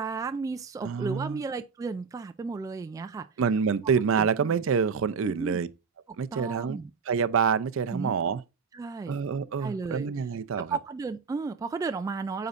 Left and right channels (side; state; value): left; quieter; 5.5 dB